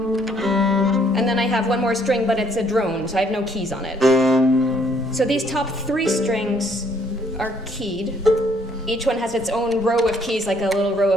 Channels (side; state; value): both; normal; correlation 0.65